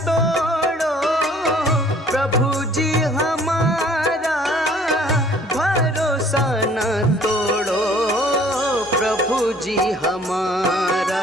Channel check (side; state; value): both; normal; correlation 0.55